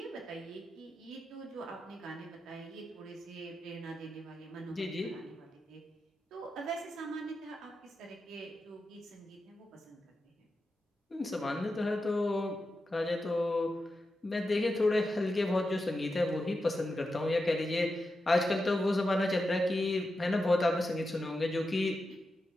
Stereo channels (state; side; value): normal; both; correlation 0.89